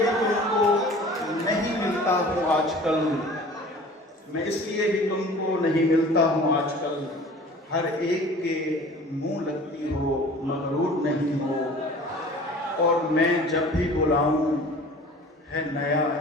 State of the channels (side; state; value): both; normal; correlation 0.44